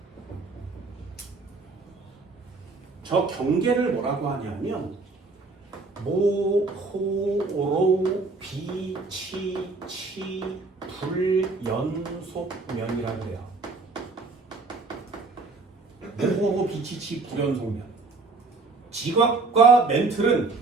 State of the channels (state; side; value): quieter; left; 3.8 dB